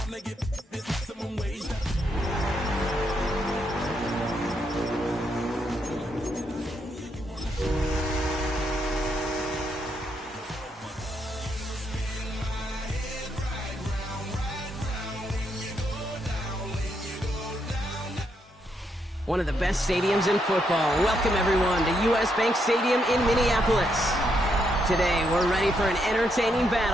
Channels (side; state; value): both; normal; correlation 0.78